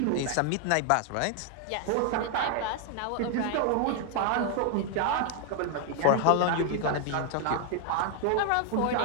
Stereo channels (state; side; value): different; both; correlation 0.00